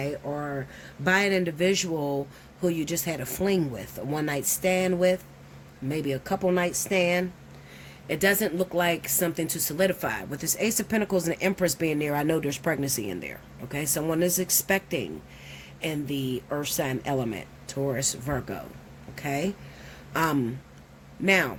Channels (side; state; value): both; identical; correlation 1.00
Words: Or by an individual who you just had a fling with, a one-night stand with, maybe a couple night stand. It doesn't look like something to solidify. With this Ace of Pentacles and the Empress being there, I know there's pregnancy in there, okay? Someone is expecting in the earth sign element, Taurus, Virgo, okay? Now,